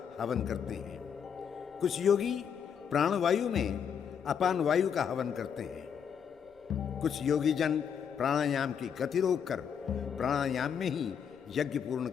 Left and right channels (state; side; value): quieter; right; 7.6 dB